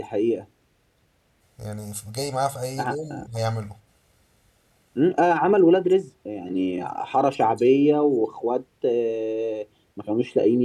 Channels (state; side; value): identical; both; correlation 1.00